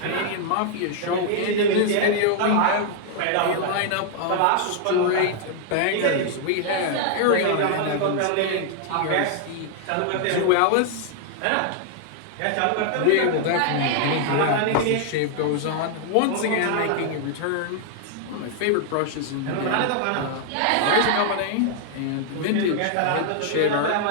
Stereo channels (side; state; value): both; different; correlation -0.01